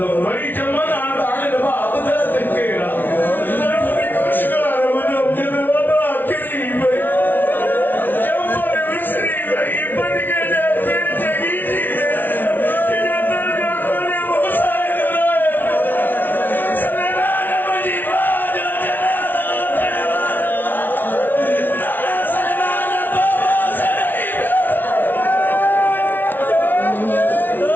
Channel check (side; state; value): right; late; 0.090 ms